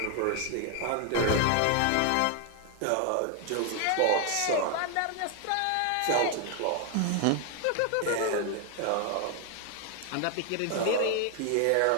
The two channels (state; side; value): different; both; correlation 0.01